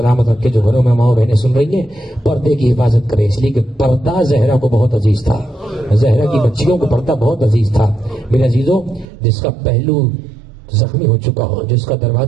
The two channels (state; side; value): drops out; left; at 9.1 s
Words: رکھے. جو گھروں میں ماں بہنیں سن رہی ہیں پردے کی حفاظت کرے، اس لیے کہ پردہ زہرا کو بہت عزیز تھا. زہرا کی بچیوں کو پردہ بہت عزیز تھا. میرے عزیزوں، جس کا پہلو زخمی ہو چکا ہو، جس کا